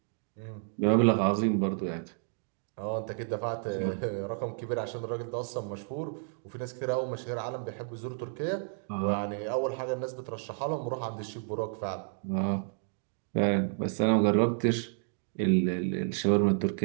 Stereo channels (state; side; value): silent; left; digital silence